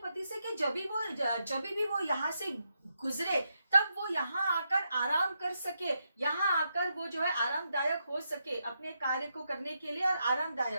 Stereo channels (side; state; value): both; inverted; correlation -0.83